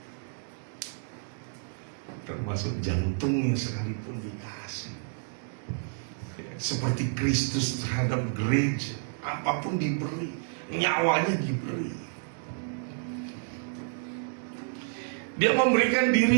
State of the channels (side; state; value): left; silent; digital silence